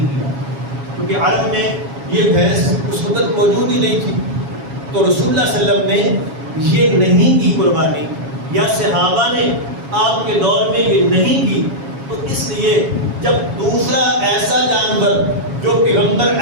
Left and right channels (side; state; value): left; late; 7.2 ms